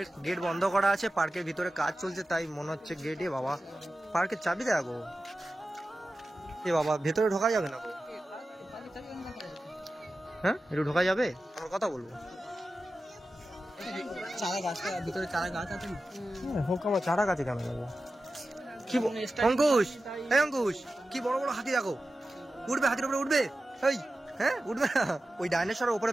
গেট বন্ধ করা আছে, পার্কের ভিতরে কাজ চলছে, তাই মনে হচ্ছে গেটে বাবা পার্কের চাবি দেখো। এ বাবা ভেতরে ঢোকা যাবে না? হ্যাঁ একটু ঢোকা যাবে? আমার কথা বলবো। চারা গাছটা ভিতরে, চারা গাছ আছে না? হোক আমার চারা গাছে কেন যাবো? কি অঙ্কুশ, এই অঙ্কুশ কি বড় বড় হাতি দেখো, উঠবে হাতির উপরে উঠবে, এই হ্যাঁ উঠবে না, ওই ডাইনোসরের উপরে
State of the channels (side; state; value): both; normal; correlation 0.94